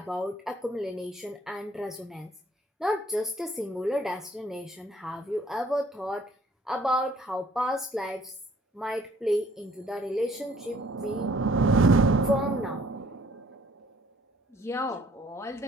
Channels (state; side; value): normal; both; correlation 0.60